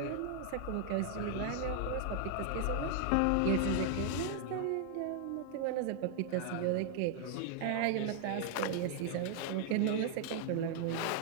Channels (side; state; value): both; different; correlation 0.00